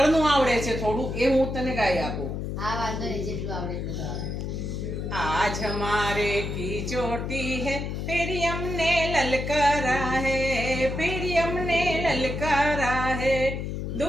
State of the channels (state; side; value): noise; left; hum, 4 dB below the sound